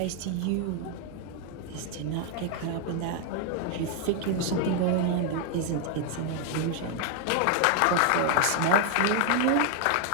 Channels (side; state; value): both; different; correlation 0.01